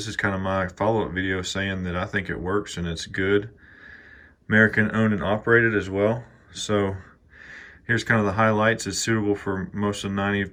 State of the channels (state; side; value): identical; both; correlation 1.00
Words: is kind of my follow-up video saying that I think it works and it's good. American owned and operated as well. So here's kind of the highlights. It's suitable for most of